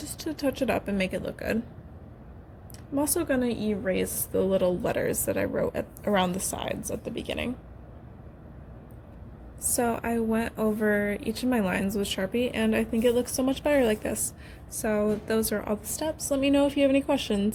to touch it up and make it look good. I'm also going to erase the little letters that I wrote around the sides at the beginning. So I went over each of my lines with Sharpie and I think it looks so much better like this. So those are all the steps. Let me know if you have any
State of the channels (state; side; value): identical; both; correlation 1.00